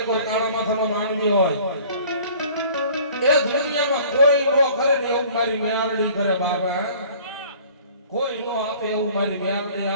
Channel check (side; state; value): both; inverted; correlation -0.50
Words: પર કાળા માથાનો માનવી હોય એ દુનિયામાં કોઈ નો કરે ને એવું મારી મ્યાલની કરે બાબા કોઈ નો આપે એવું મારી મ્યાલની